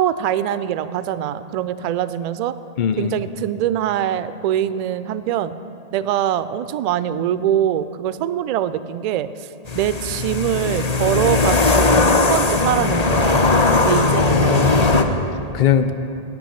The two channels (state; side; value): late; left; 1.8 ms